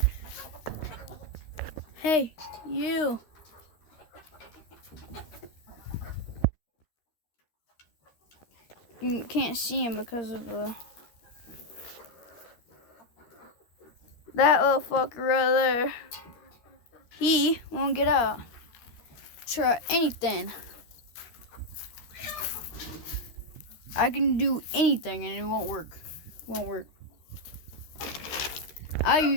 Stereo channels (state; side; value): late; right; 13 ms